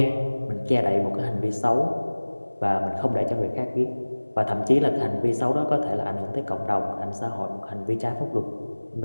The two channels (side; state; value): both; inverted; correlation -1.00